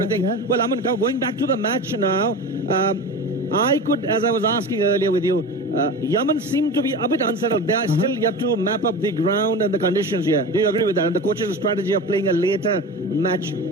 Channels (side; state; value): both; normal; correlation 0.30